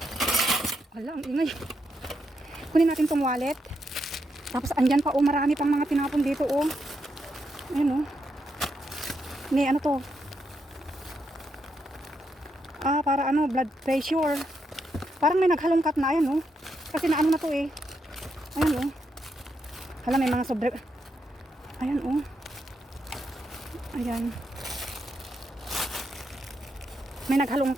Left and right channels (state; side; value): normal; both; correlation 0.81